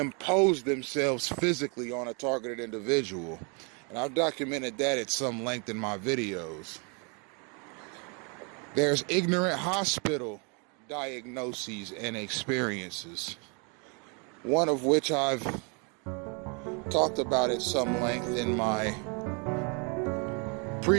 themselves physically on a targeted individual. And I've documented that at some length in my videos. There's ignorant hospital diagnoses and experiences, one of which I've talked about at some length in my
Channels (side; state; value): left; quieter; 35.1 dB